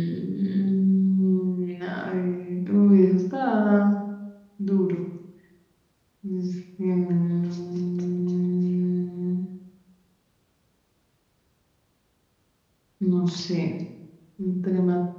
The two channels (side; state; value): both; identical; correlation 1.00